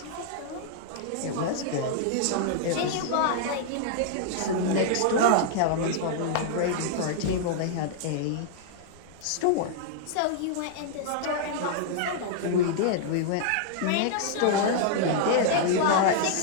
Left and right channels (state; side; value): different; both; correlation -0.01